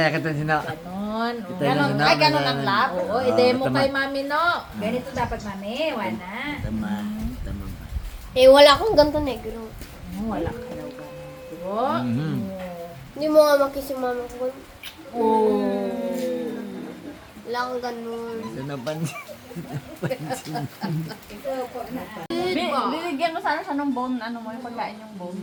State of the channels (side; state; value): both; identical; correlation 1.00